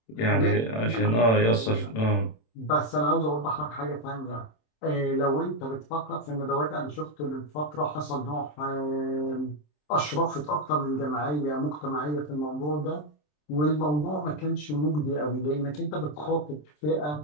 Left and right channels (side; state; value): right; late; 27 ms